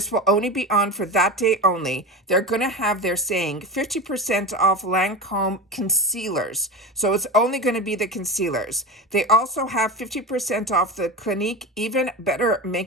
will only be on for that day only, they're going to have, they're saying 50% off Lancome concealers. So it's only going to be the concealers. They also have 50% off the Clinique Even Better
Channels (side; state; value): both; normal; correlation 0.24